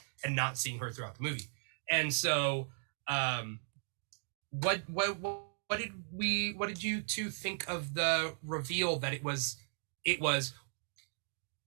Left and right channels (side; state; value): left; silent; digital silence